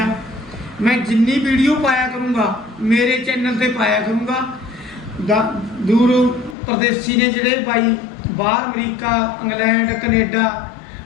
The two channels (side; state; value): right; drops out; at 6.6 s